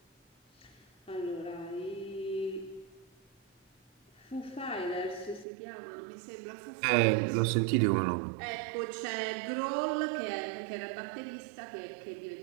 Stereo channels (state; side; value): drops out; left; at 5.5 s